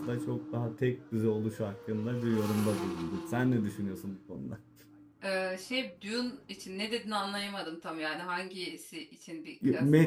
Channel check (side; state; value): both; identical; correlation 1.00